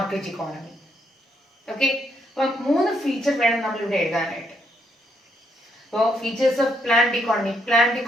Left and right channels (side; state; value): both; normal; correlation 0.75